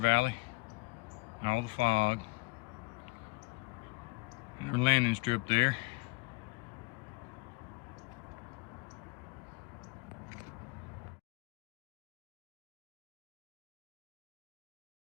All the fog. Our landing strip there.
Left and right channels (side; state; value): right; quieter; 24.8 dB